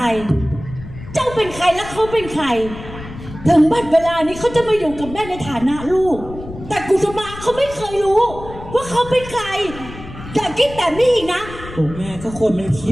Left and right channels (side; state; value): left; noise; rumble, 13 dB below the sound